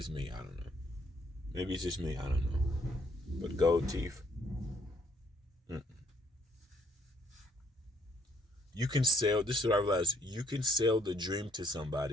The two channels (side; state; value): both; normal; correlation 0.66